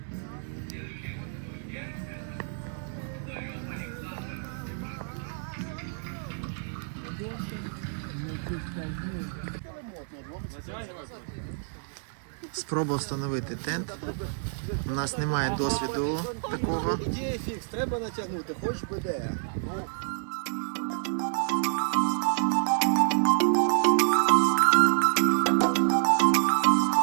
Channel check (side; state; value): left; silent; 59 dB below the other